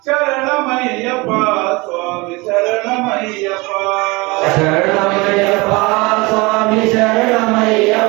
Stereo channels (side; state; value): left; quieter; 24.9 dB